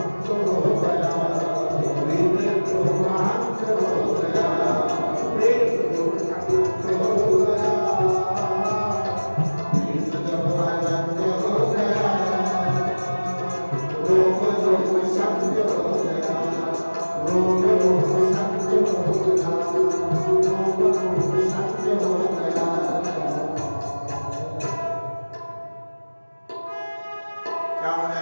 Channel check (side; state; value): both; inverted; correlation -1.00